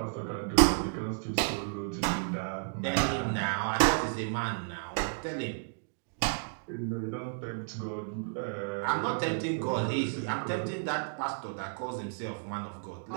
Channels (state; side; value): silent; left; digital silence